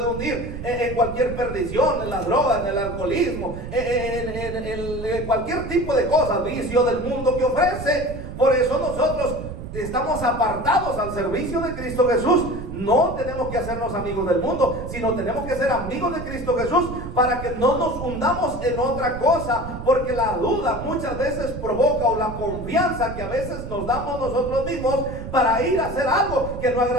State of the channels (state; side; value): noise; right; rumble, 9 dB below the sound